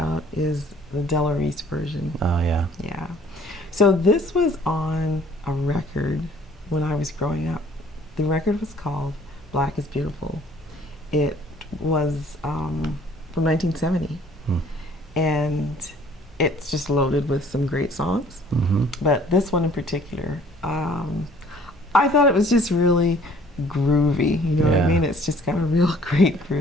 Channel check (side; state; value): both; normal; correlation 0.56